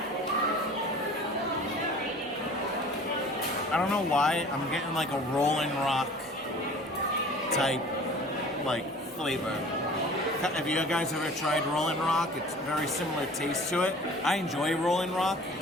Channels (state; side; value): normal; both; correlation 0.45